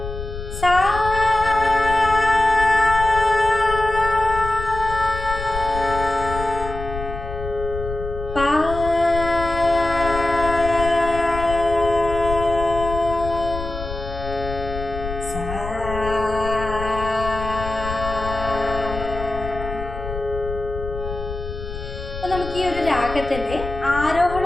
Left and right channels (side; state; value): left; noise; rumble, 8 dB below the sound